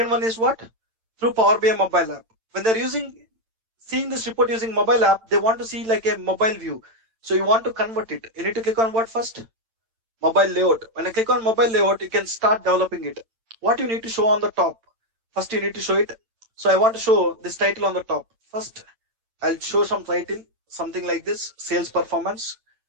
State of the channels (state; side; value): late; left; 8.9 ms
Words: one is what? Through Power BI mobile app. When they're seeing this report using mobile app, they want to see like a mobile view. So you want to convert it. You need to click on what first? Mobile layout. When I click on mobile layout, you can start developing it. What you need to show on the top? First, you need to show it. So I want to show this title on the top. First, I'll show some title, something like this, sales performance.